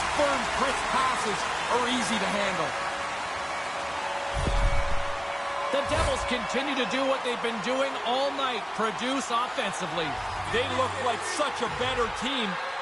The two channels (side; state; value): both; identical; correlation 1.00